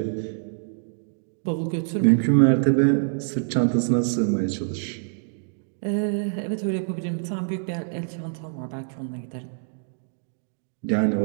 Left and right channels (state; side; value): silent; left; digital silence